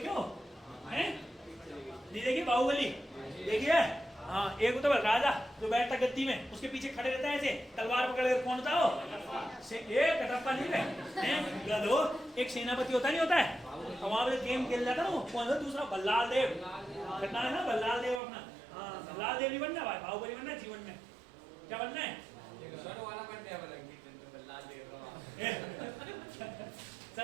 हो? हैं? नहीं देखी बाहुबली? देखिए हाँ, एक तो राजा जो बैठता गद्दी में, उसके पीछे खड़े रहता है ऐसे तलवार पकड़ कर, कौन था वो? एक कटप्पा नहीं है गधो, एक सेनापति होता नहीं होता है, और वहां पे गेम खेल जाता ना वो, कौन था दूसरा? बल्लाल देव। घटना है ना बल्लाल देव अपना। हाँ बल्लाल देव नहीं बनना भाई, बाहुबली बनना जीवन में। क्या बनना है?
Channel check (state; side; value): drops out; left; at 18.2 s